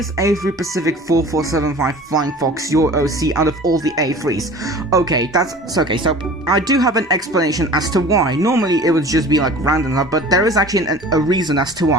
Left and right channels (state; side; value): normal; both; correlation 0.42